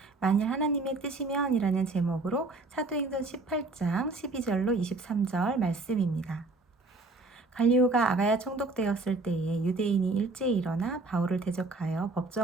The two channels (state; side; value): quieter; left; 3.4 dB